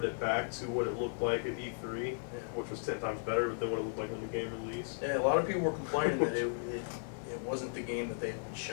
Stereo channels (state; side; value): silent; right; digital silence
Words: it back to what it looked like at E3, which was 10 times better than what it looked like when the game released. Yeah, a lot of people were complaining that it wasn't the game that they had been